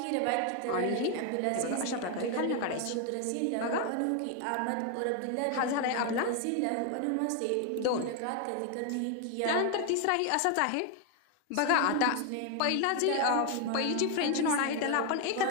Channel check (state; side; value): different; both; correlation 0.01